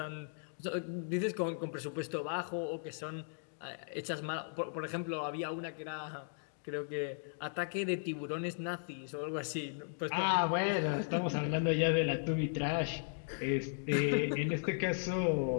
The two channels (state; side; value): silent; right; digital silence